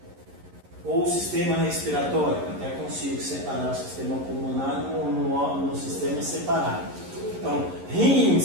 Ou o sistema respiratório, até consigo separar o sistema pulmonar no sistema separado. Então,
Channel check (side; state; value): left; late; 11 ms